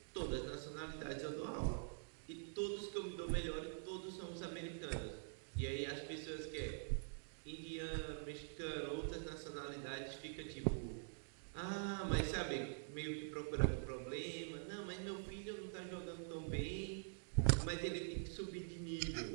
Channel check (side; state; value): left; silent; digital silence